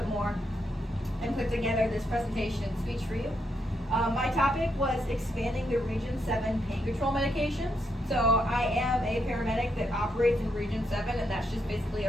more, and put together this presentation and speech for you. My topic was expanding the Region 7 pain control medications. So I am a paramedic that operates in Region 7, and that's just basically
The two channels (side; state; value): both; normal; correlation 0.79